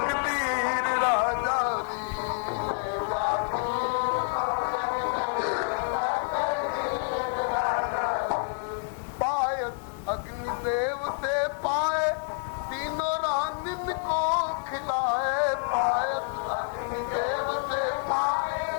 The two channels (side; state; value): right; silent; 59 dB below the other